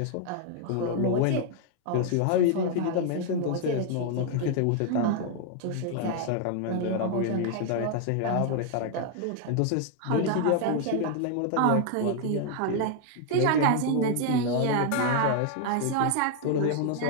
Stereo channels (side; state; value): both; different; correlation 0.00